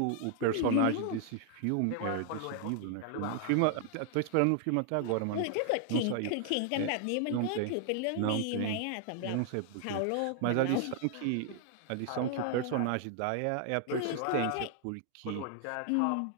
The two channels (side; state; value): both; different; correlation 0.00